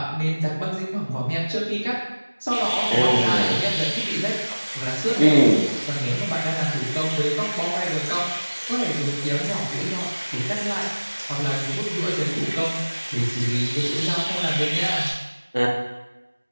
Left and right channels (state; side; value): inverted; both; correlation -1.00